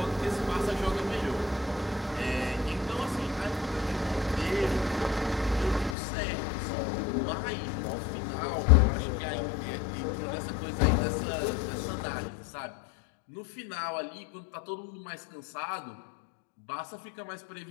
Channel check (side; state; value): right; drops out; at 6.0 s